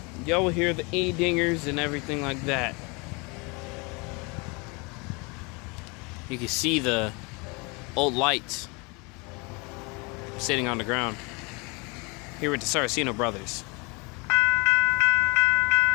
Y'all will hear the E-dingers and everything like that. You can see the old lights sitting on the ground here with the Saraceno brothers.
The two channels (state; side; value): quieter; right; 29.1 dB